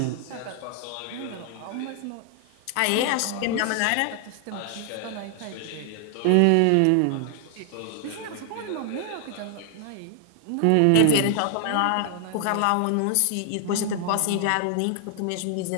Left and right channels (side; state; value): both; different; correlation 0.00